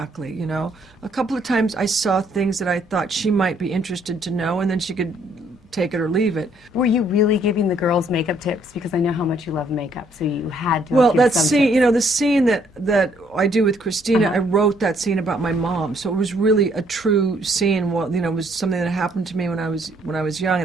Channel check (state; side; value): normal; both; correlation 0.67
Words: you know. A couple of times I saw things that I thought she might be interested to know, and then she could take it or leave it. Were you really giving the girls makeup tips? Because I know how much you love makeup, so you had to. Well, give that some scene, tips. you know, the scene that I do with Christina, I wrote that scene about my mom, so it was really a true scene. Well, you know, it was something that happened to me when I was young,